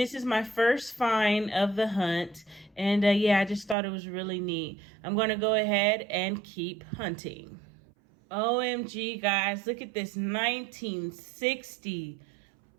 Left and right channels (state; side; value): drops out; left; at 3.8 s